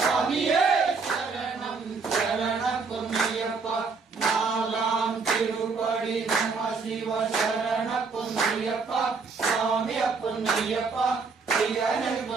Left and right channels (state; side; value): quieter; left; 4.7 dB